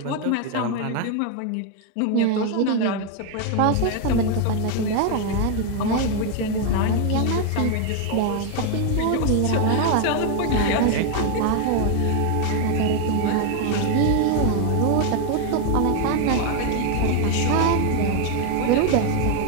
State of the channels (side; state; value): both; different; correlation 0.01